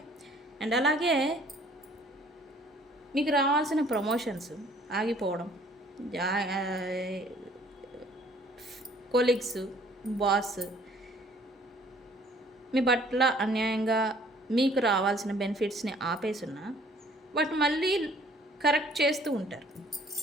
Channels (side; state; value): both; normal; correlation 0.57